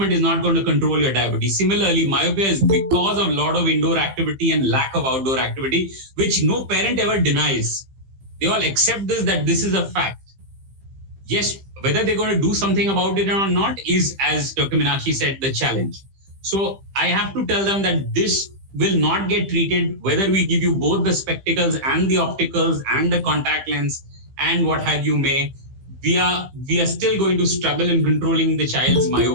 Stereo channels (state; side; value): late; left; 15 ms